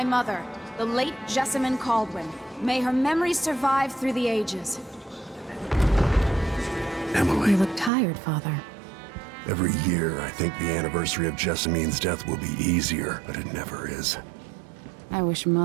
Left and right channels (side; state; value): left; drops out; at 7.9 s